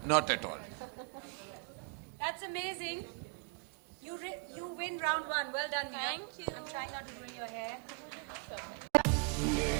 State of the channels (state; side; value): quieter; left; 35.2 dB